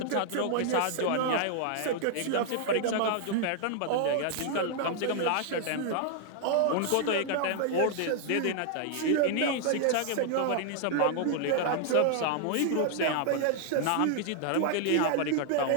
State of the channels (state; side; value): different; both; correlation 0.00